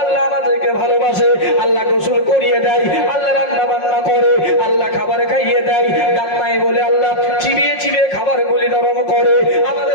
আল্লাহ আমাদেরকে ভালোবাসে, আল্লাহ গোসল করিয়ে দেয়, আল্লাহ রান্না বান্না করে, আল্লাহ খাবার খাইয়ে দেয়, দাঁত নাই বলে আল্লাহ চিবিয়ে চিবিয়ে খাবার গুলি নরম করে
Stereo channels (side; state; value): right; late; 5.5 ms